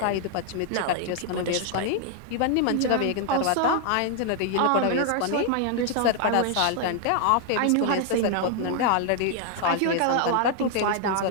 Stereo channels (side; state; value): both; different; correlation 0.00